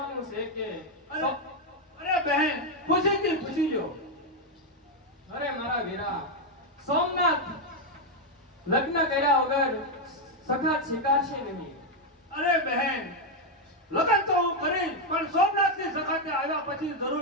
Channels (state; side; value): normal; both; correlation 0.03